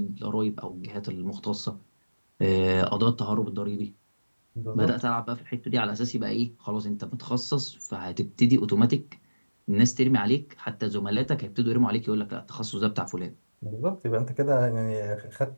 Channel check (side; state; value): both; inverted; correlation -1.00